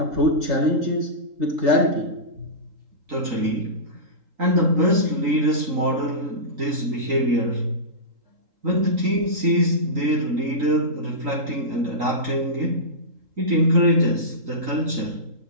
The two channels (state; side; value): late; left; 3.8 ms